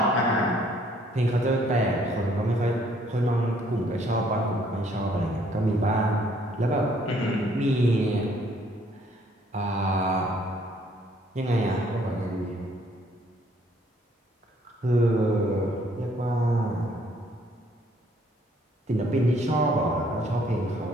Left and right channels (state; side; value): normal; both; correlation 0.64